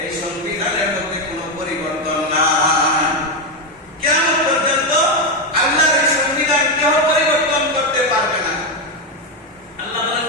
এই সংবিধানের মধ্যে কোনো পরিবর্তন নাই। কিয়ামত পর্যন্ত আল্লাহর এই সংবিধান কেউ পরিবর্তন করতে পারবে না। আল্লাহ বলেন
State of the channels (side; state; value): both; normal; correlation 0.08